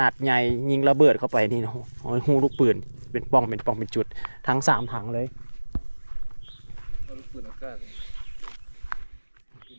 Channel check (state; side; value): inverted; both; correlation -1.00